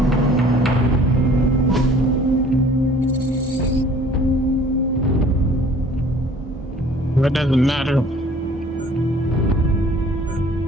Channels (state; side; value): normal; both; correlation 0.52